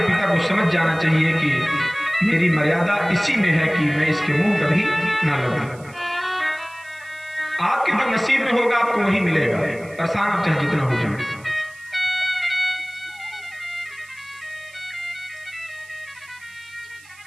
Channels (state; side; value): noise; right; hiss, 24 dB below the sound